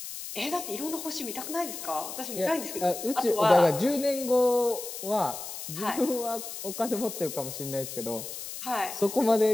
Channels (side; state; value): left; noise; hiss, 9 dB below the sound